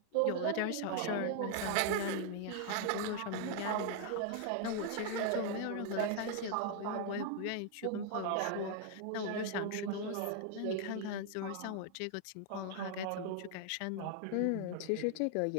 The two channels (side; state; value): both; different; correlation 0.00